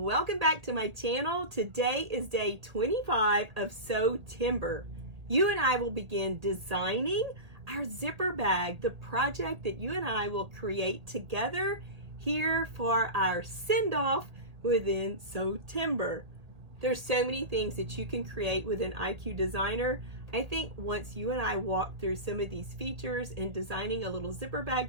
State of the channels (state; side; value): late; left; 1.8 ms